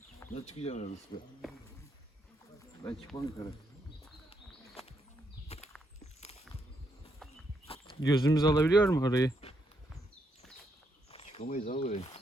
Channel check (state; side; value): normal; both; correlation 0.77